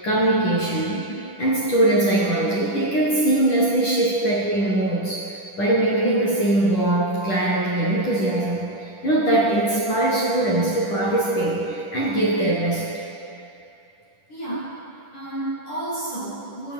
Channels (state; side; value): late; right; 10 ms